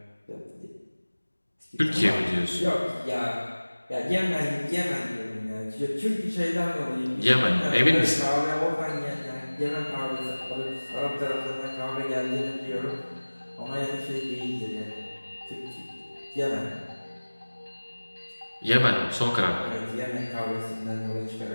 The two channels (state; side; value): inverted; both; correlation -1.00